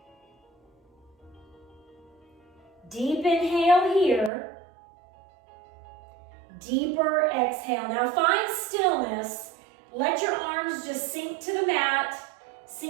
Deep inhale here. Deeper exhale. Now find stillness. Let your arms just sink to the mat,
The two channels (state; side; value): drops out; left; at 4.3 s